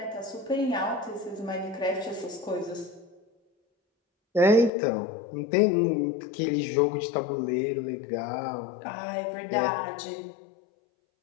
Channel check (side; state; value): right; drops out; at 4.7 s